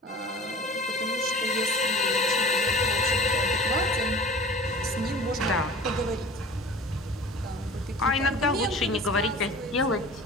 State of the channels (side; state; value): both; normal; correlation 0.41